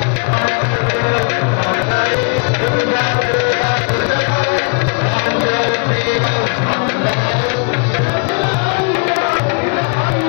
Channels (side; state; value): right; quieter; 36.4 dB